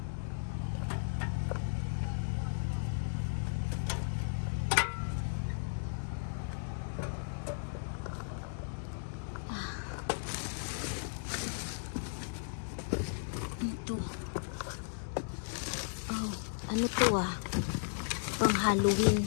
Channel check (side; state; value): right; silent; digital silence